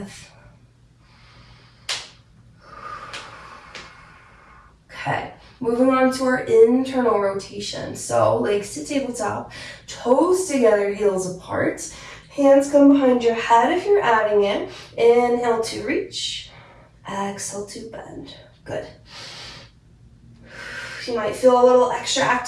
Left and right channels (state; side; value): identical; both; correlation 1.00